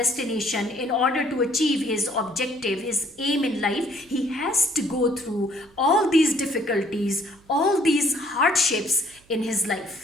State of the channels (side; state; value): right; noise; hum, 30 dB below the sound